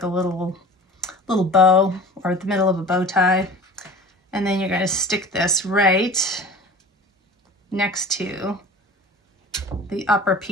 a little bow, or the middle of a bow tie. And then you're going to stick this right next to the upper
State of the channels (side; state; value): both; normal; correlation 0.39